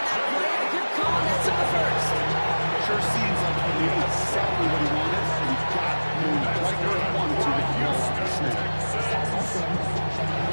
that play, and a good call, and that's on the first. Sure seems like he knew exactly what he wanted, and he got moving right where he wanted to get the ball off the snap.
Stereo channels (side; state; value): both; inverted; correlation -1.00